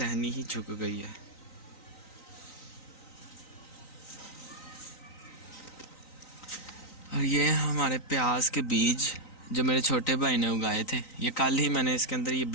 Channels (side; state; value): right; late; 3.9 ms